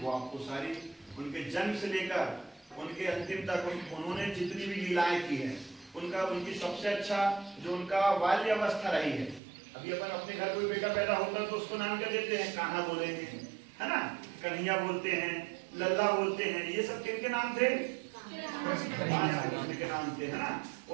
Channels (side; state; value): left; drops out; at 9.4 s